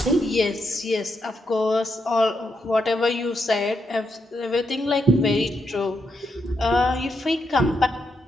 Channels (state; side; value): normal; both; correlation 0.81